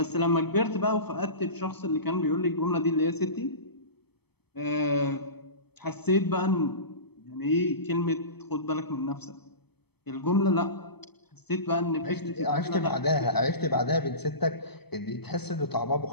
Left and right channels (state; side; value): late; right; 0.97 ms